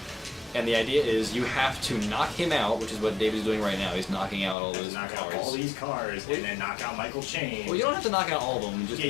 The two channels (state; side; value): drops out; right; at 4.5 s